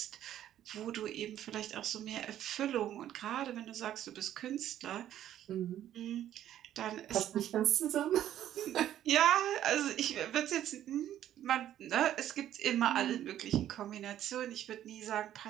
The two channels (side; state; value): left; quieter; 11.7 dB